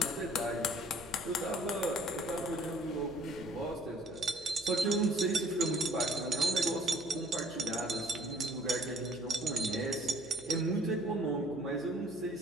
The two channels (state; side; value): noise; right; hum, 24 dB below the sound